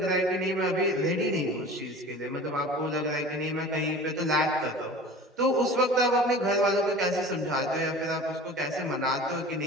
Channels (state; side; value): normal; both; correlation 0.39